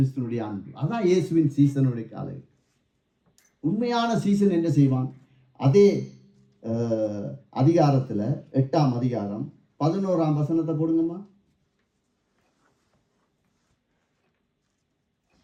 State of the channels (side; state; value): both; identical; correlation 1.00